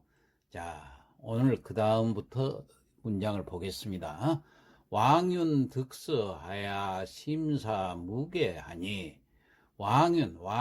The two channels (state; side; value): identical; both; correlation 1.00